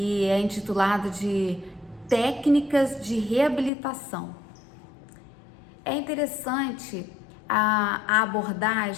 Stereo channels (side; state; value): right; drops out; at 3.7 s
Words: é intitulado de Técnicas de Reabilitação. É interessante a